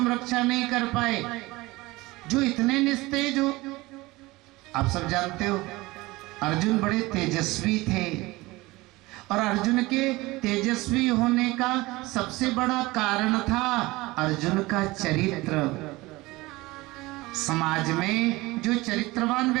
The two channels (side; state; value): left; quieter; 20.8 dB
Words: रक्षा नहीं कर पाए, जो इतने निस्तेज हो? आप सब जानते हो अर्जुन बड़े तेजस्वी थे, और अर्जुन के तेजस्वी होने का सबसे बड़ा कारण था अर्जुन का चरित्र। समाज में जो चरित्रवान